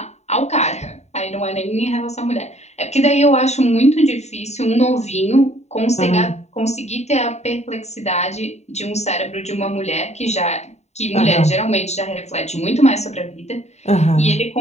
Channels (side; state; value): right; late; 0.32 ms